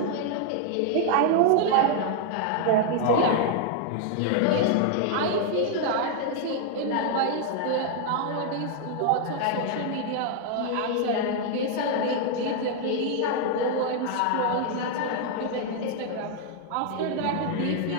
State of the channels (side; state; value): both; different; correlation 0.00